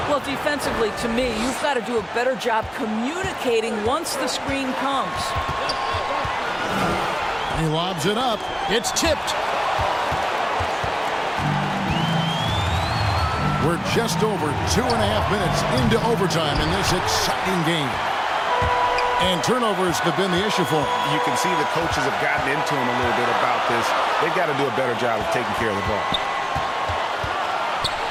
Well, defensively, to me, you've got to do a better job communicating once the screen comes. He lobs it up. It's tipped. We're just over 2.5 minutes into overtime in this exciting game. And turnovers have been the issue for him. You can see the coaches have gotten into him a little bit about this. They've got to do a better job of taking care of the ball.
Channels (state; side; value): identical; both; correlation 1.00